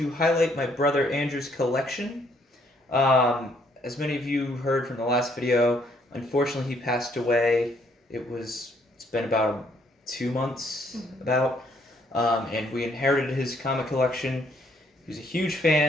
highlight my brother Andrew's collection. As many of you heard from the last video, unfortunately he passed away. It's been about 2 months, and we inherited his comic collection. He was a huge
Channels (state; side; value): normal; both; correlation 0.67